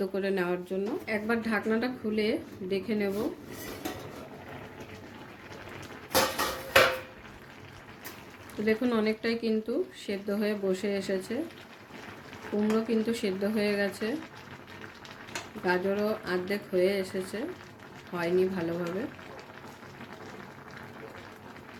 করে নেওয়ার জন্য। একবার ঢাকনাটা খুলে দেখে নেব। তো দেখুন অনেকটাই কিন্তু সেদ্ধ হয়ে বসে এসেছে। কুমড়ো কিন্তু সেদ্ধ হয়ে গেছে, গাজরও অর্ধেক হয়ে এসেছে, হয়নি ভালোভাবে,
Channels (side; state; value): both; identical; correlation 1.00